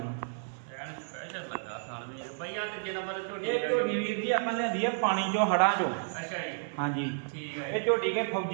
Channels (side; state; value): left; silent; digital silence